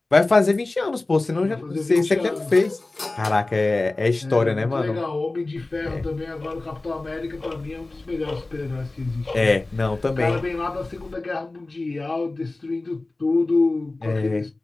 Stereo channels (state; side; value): quieter; right; 3.1 dB